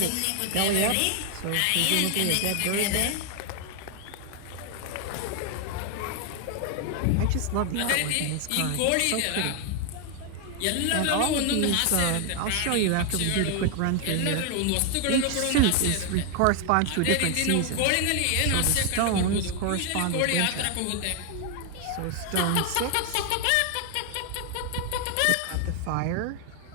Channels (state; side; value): different; both; correlation 0.00